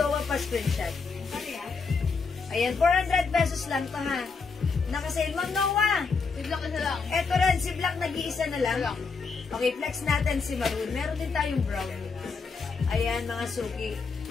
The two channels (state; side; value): quieter; right; 4.8 dB